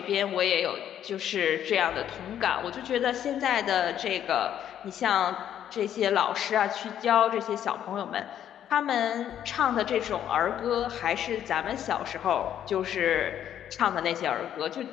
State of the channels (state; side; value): quieter; right; 10.3 dB